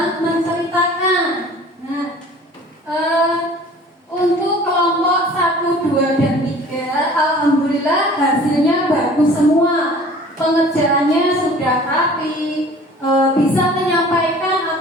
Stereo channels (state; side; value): normal; both; correlation 0.47